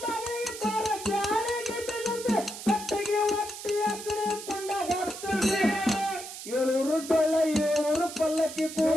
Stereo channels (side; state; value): right; noise; hiss, 11 dB below the sound